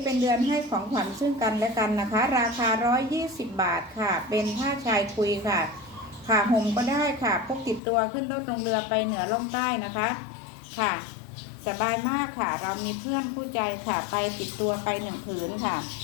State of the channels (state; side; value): drops out; right; at 7.8 s